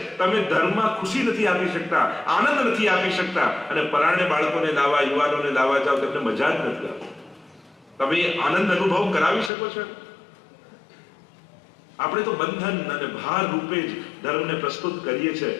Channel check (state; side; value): drops out; right; at 9.5 s